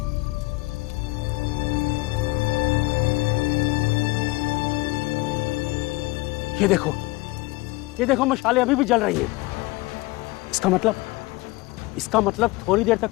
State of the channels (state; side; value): quieter; right; 22.3 dB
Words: ये देखो मशालें अभी भी जल रही हैं। इसका मतलब थोड़ी देर तक